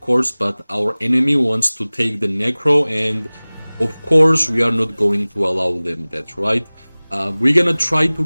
course, but our enemy wants to take the Necro, and of course, we are not going to allow them that, right? We're gonna try to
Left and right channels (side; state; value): both; inverted; correlation -1.00